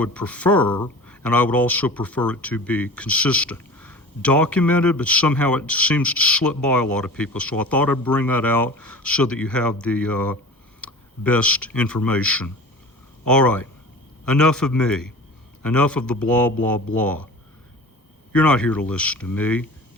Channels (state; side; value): normal; both; correlation 0.38